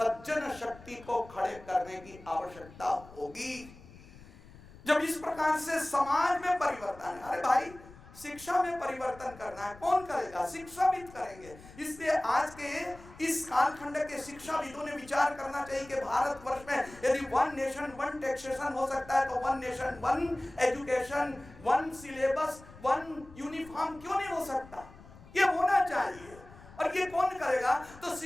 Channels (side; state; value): left; noise; rumble, 20 dB below the sound